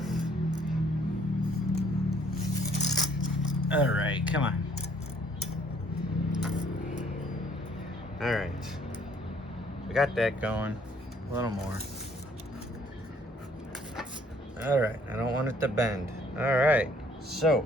All right, come on. All right, we got that going. A little more. All right, I don't want it to bend. All right,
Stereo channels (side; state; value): both; normal; correlation 0.62